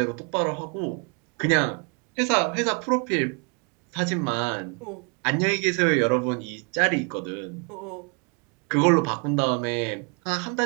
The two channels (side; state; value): left; quieter; 34.7 dB